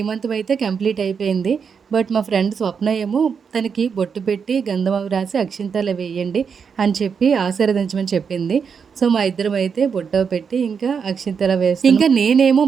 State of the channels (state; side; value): quieter; left; 6.3 dB